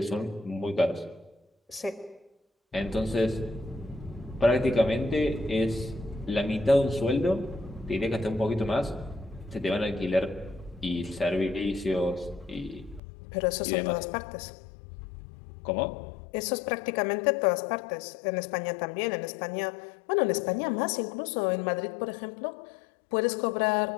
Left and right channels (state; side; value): drops out; right; at 13.0 s